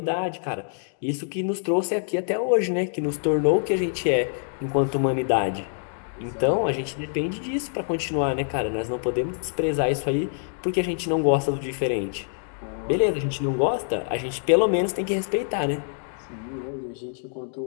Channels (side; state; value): right; silent; digital silence